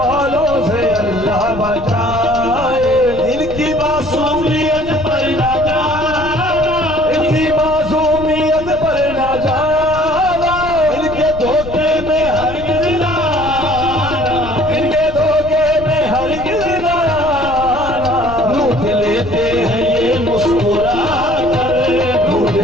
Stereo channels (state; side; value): noise; left; rumble, 12 dB below the sound